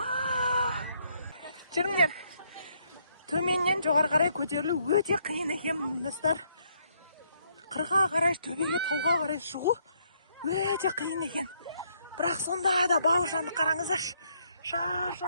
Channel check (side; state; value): both; inverted; correlation -0.72